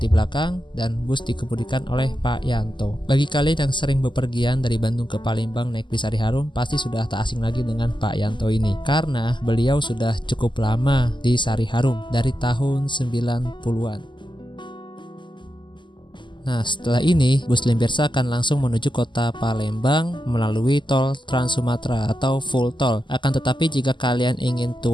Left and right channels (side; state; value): right; late; 0.23 ms